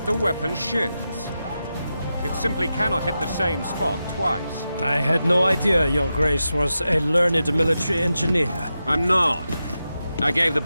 the weapon shifts. It simply cannot hit the same spot twice. I had no idea Your Grace was a learned military engineer. I'm not. I gave the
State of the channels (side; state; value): both; inverted; correlation -0.90